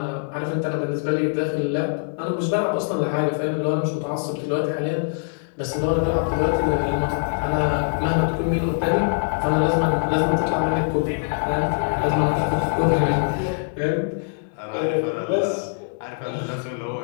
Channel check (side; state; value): right; silent; 63 dB below the other